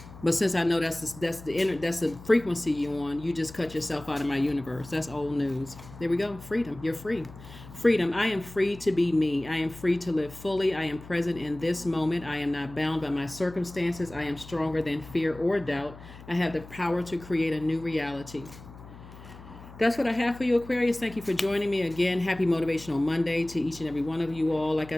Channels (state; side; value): noise; left; hum, 17 dB below the sound